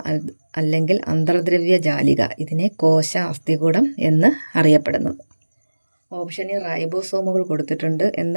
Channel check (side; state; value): both; inverted; correlation -1.00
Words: അല്ലെങ്കിൽ അന്തർദ്രവ്യ ജാലിക ഇതിനെ കോശ അസ്ഥികൂടം എന്ന് അറിയപ്പെടുന്നത്. ഓപ്ഷനിൽ റൈബോസോമുകൾ കൊടുത്തിട്ടുണ്ട്.